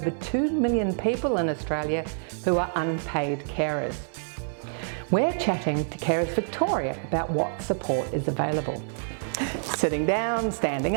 2 million people in Australia who are unpaid carers. We're chatting to Carers Victoria about what support is available. Sitting down, standing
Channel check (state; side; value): silent; left; 60 dB below the other